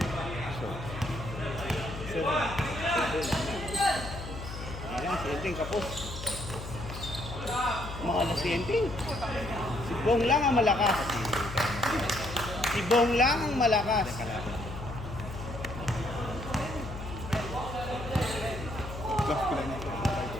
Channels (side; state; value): left; noise; hum, 9 dB below the sound